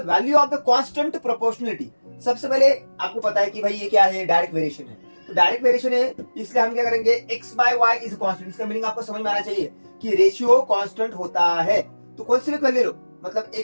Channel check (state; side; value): inverted; both; correlation -1.00